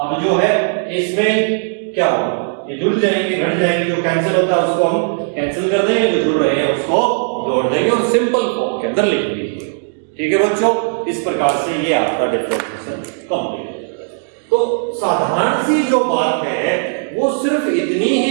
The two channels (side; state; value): left; silent; digital silence